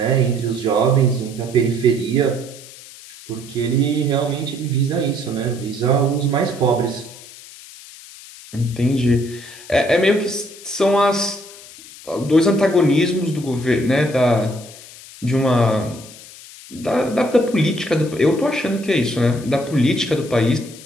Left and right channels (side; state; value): left; noise; hiss, 18 dB below the sound